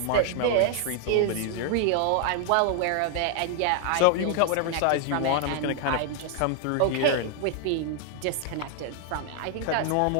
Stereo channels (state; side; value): different; both; correlation 0.00